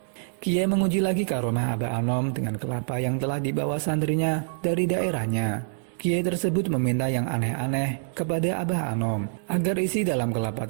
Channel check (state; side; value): silent; left; digital silence